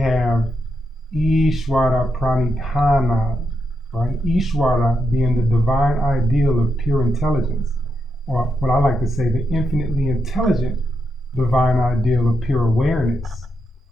Ishvara Pranidhana, right? Ishvara being the divine ideal of pure intelligence, or what I like to say, the infinitely intelligent divine ideal of pure awareness,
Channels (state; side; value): normal; both; correlation 0.84